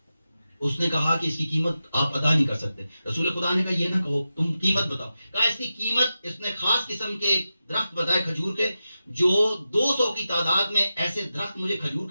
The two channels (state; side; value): inverted; both; correlation -0.92